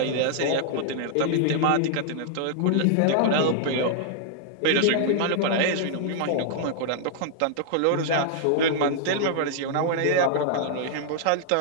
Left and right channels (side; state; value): both; different; correlation -0.01